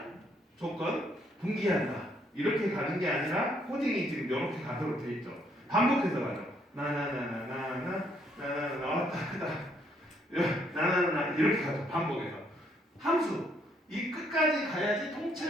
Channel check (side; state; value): both; normal; correlation 0.70